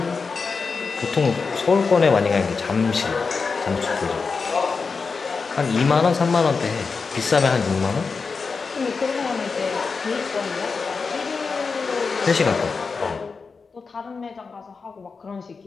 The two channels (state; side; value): quieter; right; 4.8 dB